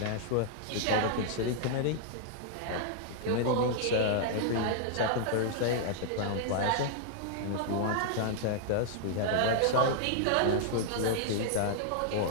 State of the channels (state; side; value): different; both; correlation 0.00